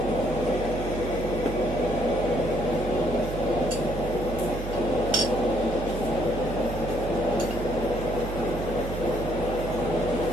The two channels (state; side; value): noise; right; hum, 6 dB below the sound